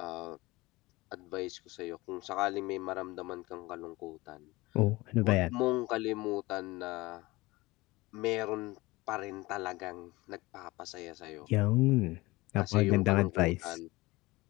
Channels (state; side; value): quieter; right; 21.3 dB